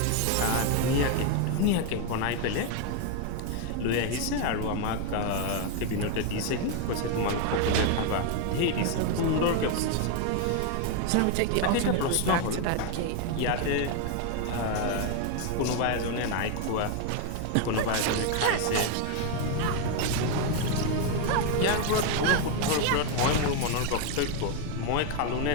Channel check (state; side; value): different; both; correlation 0.01